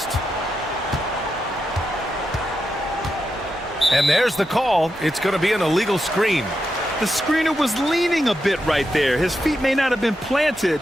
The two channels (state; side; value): normal; both; correlation 0.86